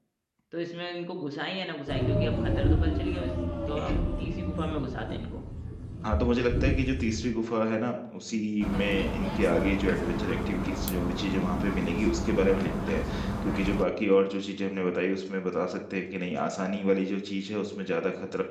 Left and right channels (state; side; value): identical; both; correlation 1.00